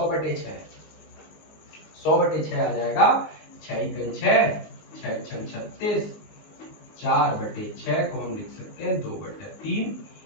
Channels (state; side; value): late; right; 19 ms